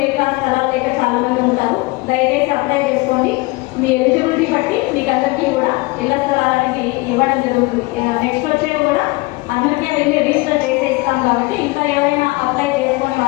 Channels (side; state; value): right; quieter; 23.5 dB